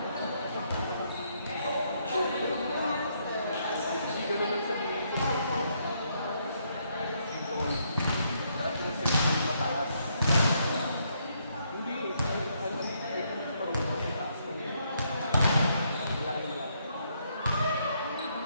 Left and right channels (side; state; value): both; inverted; correlation -0.74